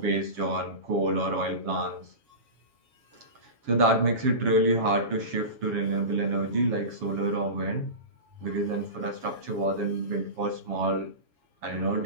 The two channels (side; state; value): left; late; 7.2 ms